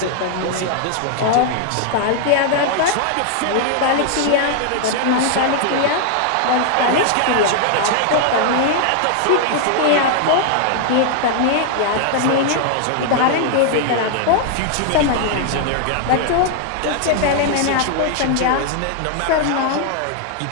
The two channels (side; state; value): both; different; correlation 0.00